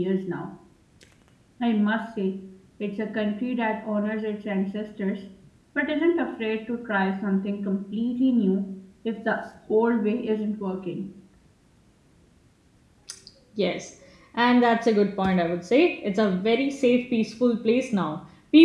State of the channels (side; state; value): both; identical; correlation 1.00